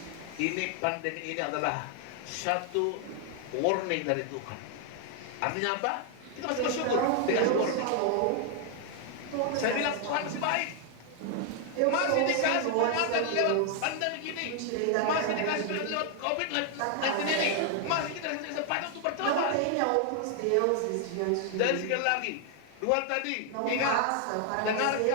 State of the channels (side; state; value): both; different; correlation 0.00